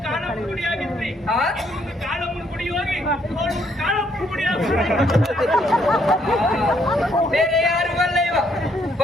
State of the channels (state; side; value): normal; both; correlation 0.70